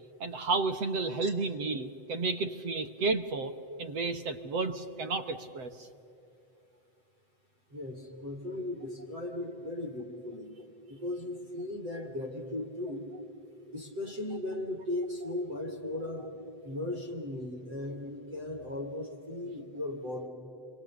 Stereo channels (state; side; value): late; left; 7.8 ms